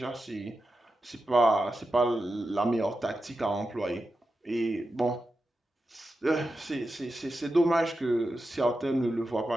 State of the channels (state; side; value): normal; both; correlation 0.90